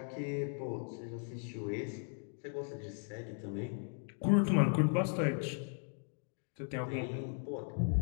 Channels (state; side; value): silent; right; 53 dB below the other